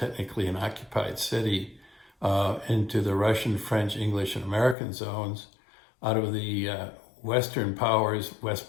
an occupied city, into the Russian, French, English, and American zones. Out of the Western powers,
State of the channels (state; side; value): drops out; right; at 4.8 s